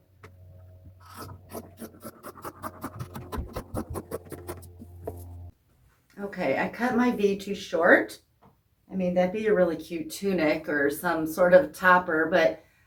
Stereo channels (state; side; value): identical; both; correlation 1.00